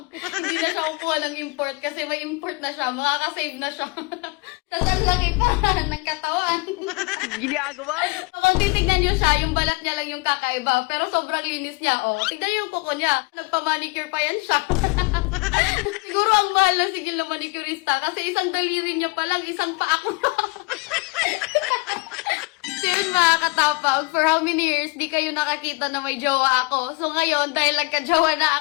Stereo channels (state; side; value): quieter; right; 27.2 dB